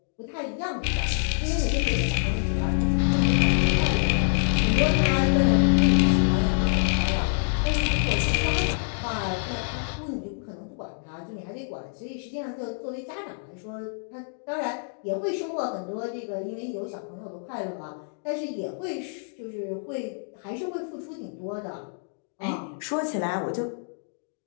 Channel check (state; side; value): silent; right; 61 dB below the other